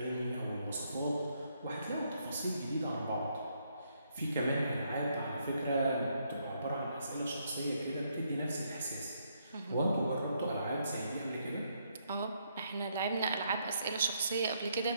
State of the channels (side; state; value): both; inverted; correlation -0.74